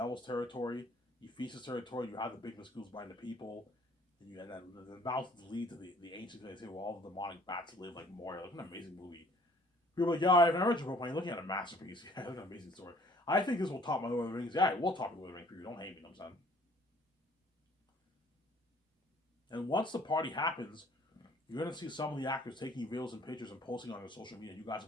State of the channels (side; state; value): both; normal; correlation 0.57